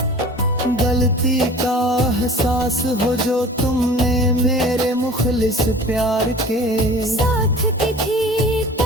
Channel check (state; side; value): normal; both; correlation 0.43